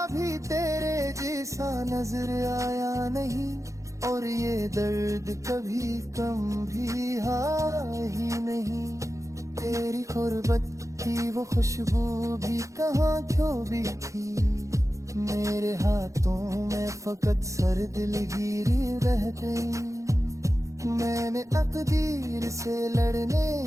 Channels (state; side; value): late; left; 0.15 ms